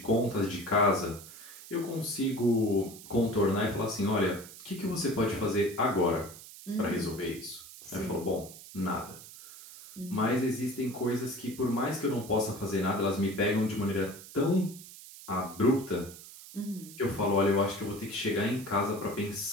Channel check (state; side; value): noise; right; hiss, 16 dB below the sound